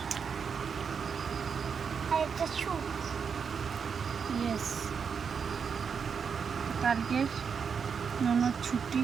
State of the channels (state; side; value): quieter; left; 6.3 dB